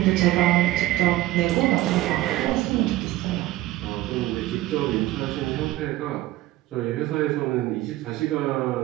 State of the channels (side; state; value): left; quieter; 16.2 dB